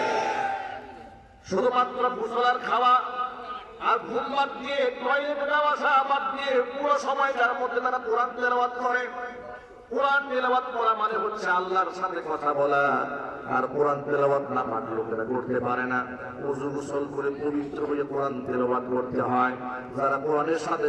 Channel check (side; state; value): both; identical; correlation 1.00